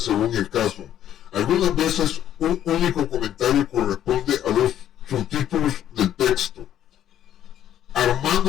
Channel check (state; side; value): quieter; right; 11.1 dB